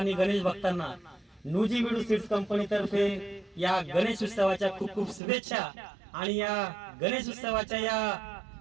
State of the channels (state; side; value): drops out; left; at 5.2 s